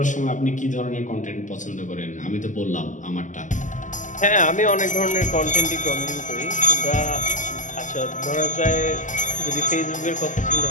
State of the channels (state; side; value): late; right; 0.37 ms